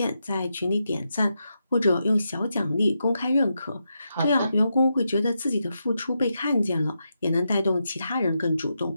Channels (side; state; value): both; inverted; correlation -0.85